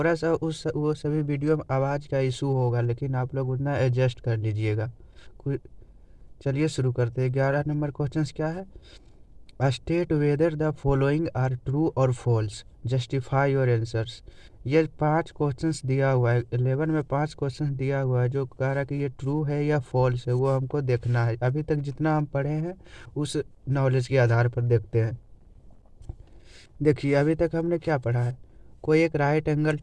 सा वो सभी वीडियो में आवाज़ का इशू होगा, लेकिन आप लोग उतना एडजस्ट कर लीजिएगा। चलिए शुरू करते हैं। 11 नंबर क्वेश्चंस क्या है? State whether the following are true और फॉल्स, जस्टिफाई योर आंसर्स। ये 5 क्वेश्चंस दिया हुआ है। 11 में 5 क्वेश्चंस दिया हुआ है जो कह रहा है कि ये ट्रू है या फॉल्स है, वो हमको देखना है। अभी तक जितना हम पढ़े हैं उस नॉलेज के आधार पर देखते हैं। देखिए अभी तक हमने क्या पढ़ा है। कोई एक राइट एंगल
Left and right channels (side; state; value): both; identical; correlation 1.00